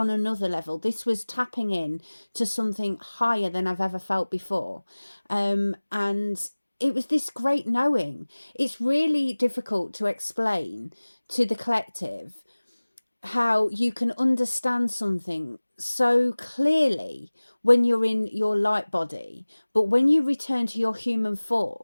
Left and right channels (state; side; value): inverted; both; correlation -1.00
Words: another level. This was tapping in to something higher than I've ever felt before, and it was this great knowing. It's really difficult to explain to the collective how you can understand something so clearly when you're in your light body, but when you return to your human